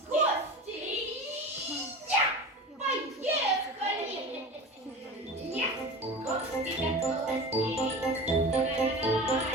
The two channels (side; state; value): both; normal; correlation 0.32